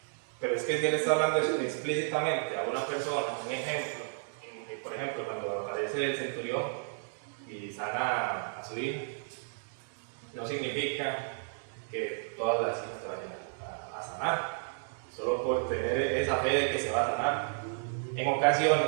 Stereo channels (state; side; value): silent; left; digital silence